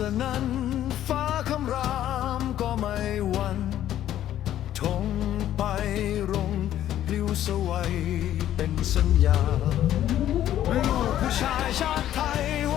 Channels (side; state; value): right; quieter; 12.0 dB